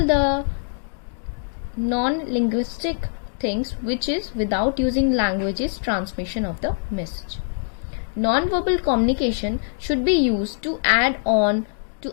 the non-linguistic things, which is without using language's transmission of the message. Non-verbal communication should be used to add on to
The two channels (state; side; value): silent; right; digital silence